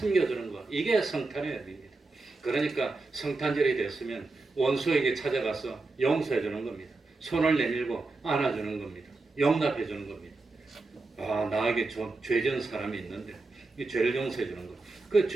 주는 것. 이게 성탄의 의미입니다. 그러니까 성탄절이 됐으면 원수에게 찾아가서 용서해 주는 겁니다. 손을 내밀고 안아 주는 겁니다. 용납해 주는 겁니다. 나에게 죄 지은 사람이 있는데 이 죄를 용서해 주는 것. 그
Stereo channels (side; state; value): left; quieter; 3.4 dB